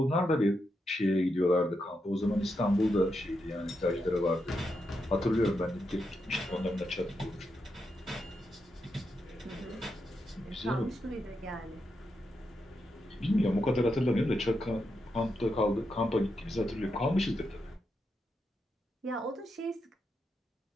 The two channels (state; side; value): normal; both; correlation 0.84